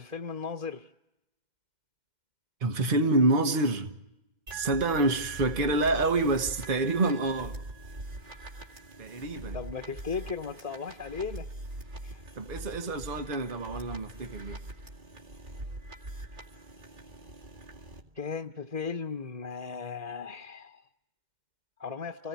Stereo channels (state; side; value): late; left; 2.5 ms